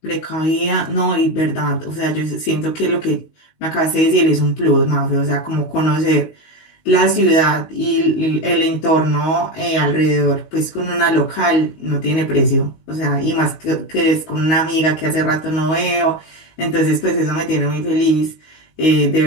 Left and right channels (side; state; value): right; late; 19 ms